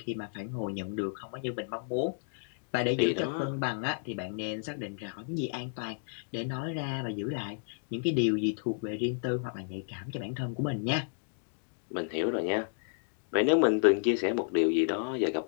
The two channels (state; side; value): silent; right; digital silence